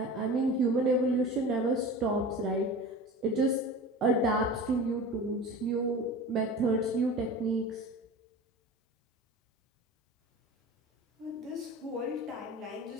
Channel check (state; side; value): normal; both; correlation 0.34